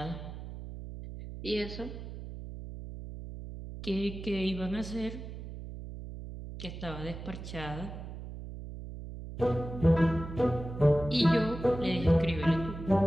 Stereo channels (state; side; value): noise; right; hum, 10 dB below the sound